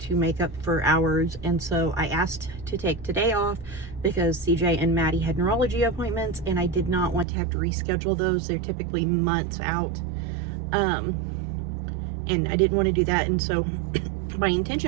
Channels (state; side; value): drops out; left; at 7.2 s